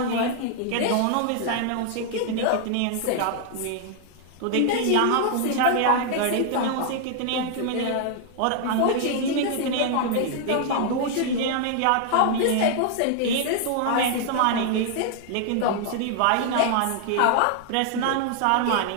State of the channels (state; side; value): different; both; correlation 0.00